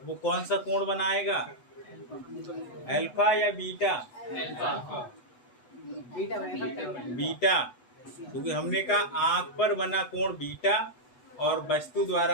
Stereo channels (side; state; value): right; late; 8.1 ms